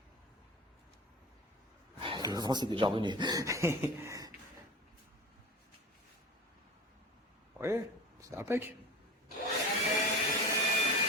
Le vent, c'est déjà revenu. Oui, c'est impec.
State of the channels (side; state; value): both; normal; correlation 0.34